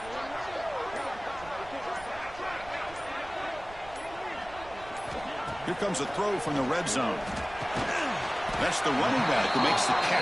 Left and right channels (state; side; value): noise; right; rumble, 18 dB below the sound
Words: Here comes a throw from the red zone. That's the running back who makes the